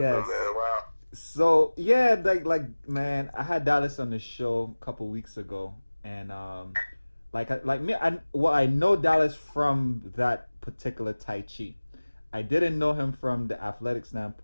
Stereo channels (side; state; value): both; inverted; correlation -1.00